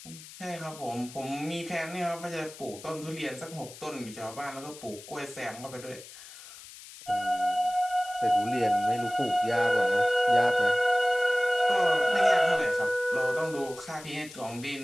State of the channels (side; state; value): left; noise; hiss, 17 dB below the sound